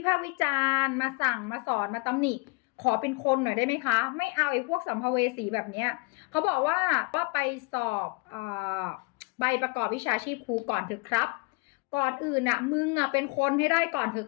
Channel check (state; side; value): quieter; right; 28.1 dB